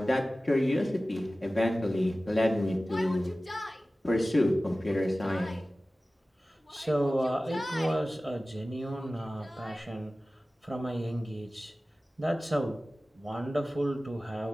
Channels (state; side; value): normal; both; correlation 0.96